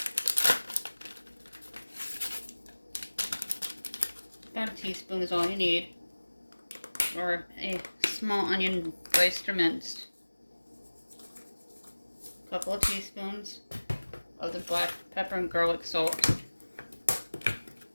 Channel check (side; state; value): both; inverted; correlation -1.00